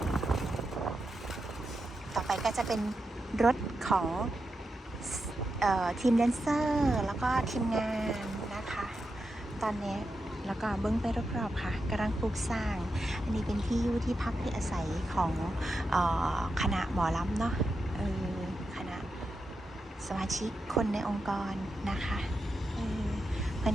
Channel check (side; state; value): both; normal; correlation 0.88